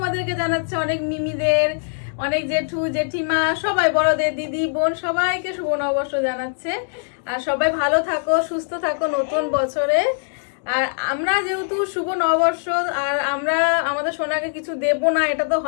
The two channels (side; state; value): right; silent; digital silence